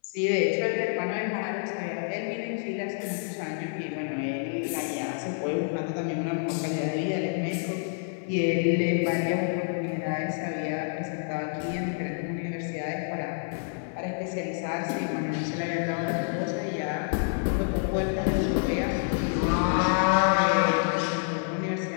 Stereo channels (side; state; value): right; silent; 59 dB below the other